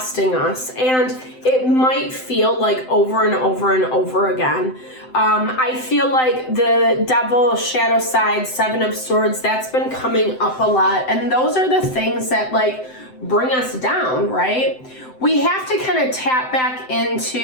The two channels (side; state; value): right; late; 7.8 ms